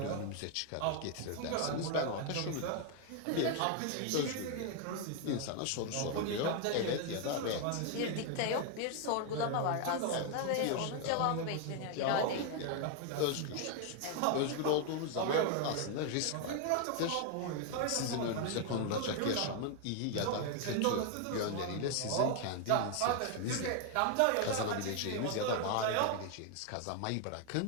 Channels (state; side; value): different; both; correlation 0.01